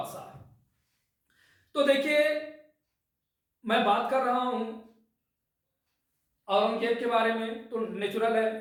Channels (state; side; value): identical; both; correlation 1.00